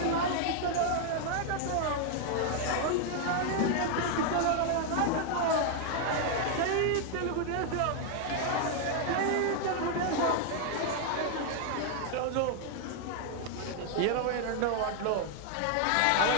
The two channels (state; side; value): different; both; correlation 0.00